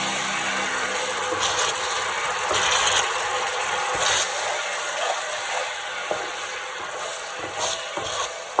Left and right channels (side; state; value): both; identical; correlation 1.00